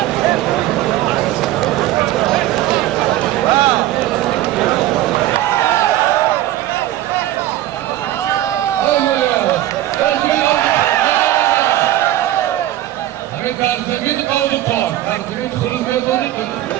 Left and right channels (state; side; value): quieter; left; 14.2 dB